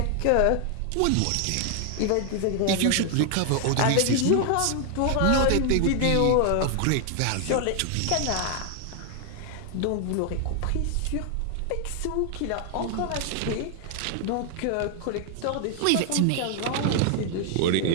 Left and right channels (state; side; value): different; both; correlation 0.00